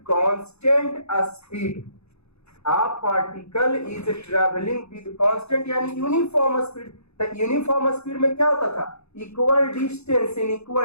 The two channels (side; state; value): right; late; 0.80 ms